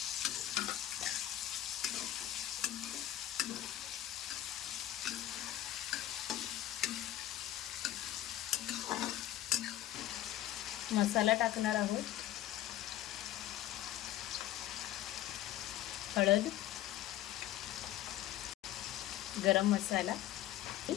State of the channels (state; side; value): quieter; right; 13.3 dB